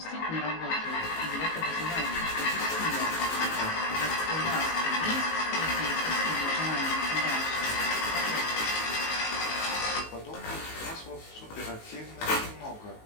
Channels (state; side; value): late; right; 19 ms